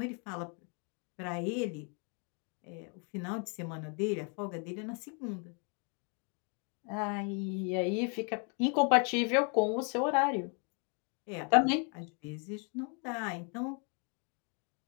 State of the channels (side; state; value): right; quieter; 38.1 dB